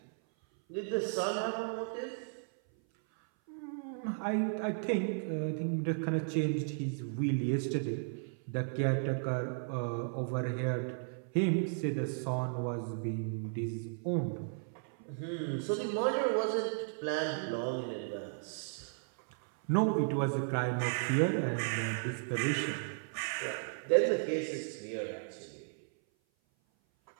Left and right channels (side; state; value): left; silent; 55 dB below the other